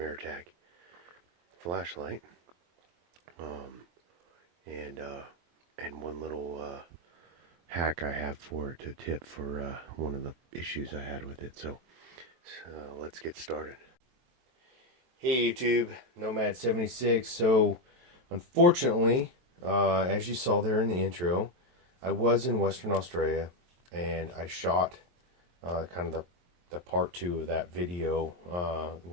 flashlight. Um, and one little hack I have for it, a tip for one of the issues I had with it. So let's get started. Hey YouTube, Nomad76. So unfortunately, as you saw there in the intro, I was in Western Australia and I shot kind of the part 2 of that video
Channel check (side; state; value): left; late; 23 ms